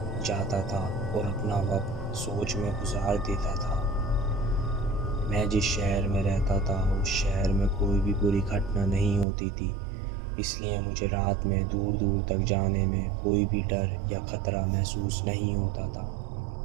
जाता था और अपना वक्त सोच में गुजार देता था। मैं जिस शहर में रहता था उस शहर में कोई भी बुरी घटना नहीं होती थी, इसलिए मुझे रात में दूर दूर तक जाने में कोई भी डर या ख़तरा महसूस नहीं होता था।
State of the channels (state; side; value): drops out; left; at 9.2 s